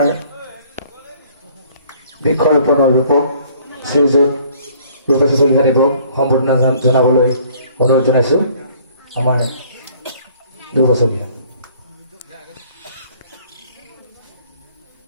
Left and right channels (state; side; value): inverted; both; correlation -0.57